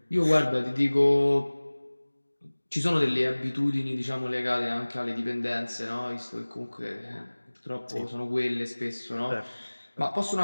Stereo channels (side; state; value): both; inverted; correlation -1.00